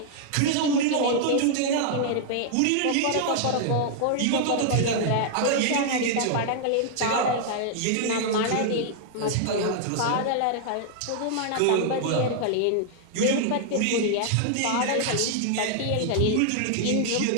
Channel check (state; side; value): different; both; correlation -0.01